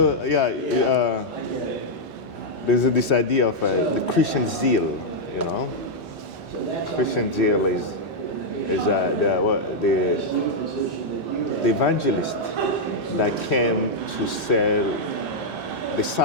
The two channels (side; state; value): both; normal; correlation -0.04